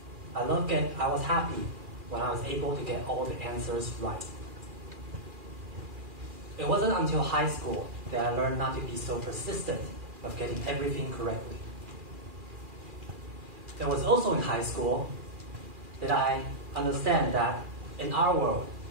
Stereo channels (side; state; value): left; late; 2.4 ms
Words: I was happy when I was able to get all the answers right. It wasn't until high school that I learned not to be so persistent of getting everything correctly. It was also in high school that I understand that in our world,